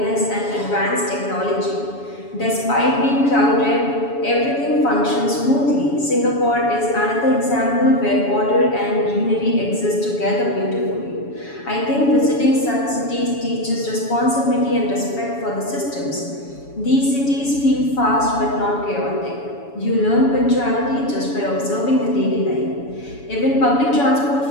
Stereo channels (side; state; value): right; late; 7.1 ms